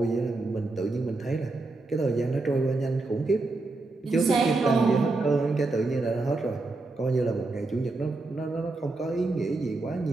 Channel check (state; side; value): quieter; left; 3.3 dB